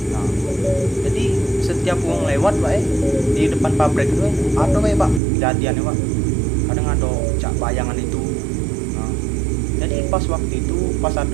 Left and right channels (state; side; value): drops out; left; at 5.2 s